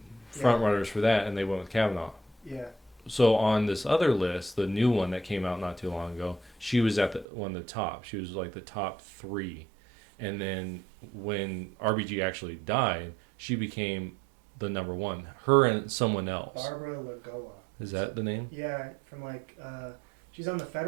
front runners for that, and they went with Kavanaugh. Yeah. So on this other list, the new one that came out not too long ago, she was at one of the top. She was like the top 3. And then when RBG actually died, she became the number 1. Her and someone else. Barbara Lagoa. Is that the name? Yeah, from she's on the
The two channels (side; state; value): left; drops out; at 7.2 s